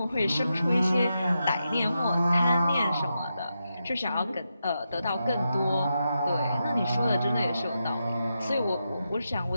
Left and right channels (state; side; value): inverted; both; correlation -0.86